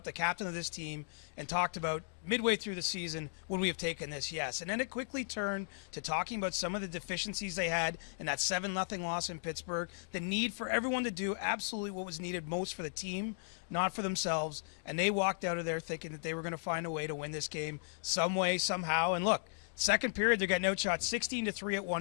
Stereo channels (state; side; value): silent; right; digital silence